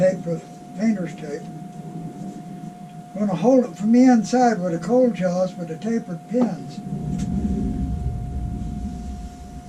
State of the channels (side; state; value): both; identical; correlation 1.00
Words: with painter's tape. I'm going to hold it from the inside with the cold jaws with the tapered pins.